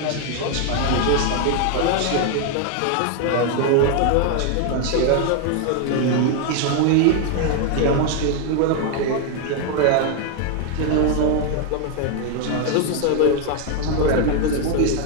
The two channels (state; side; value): different; both; correlation 0.01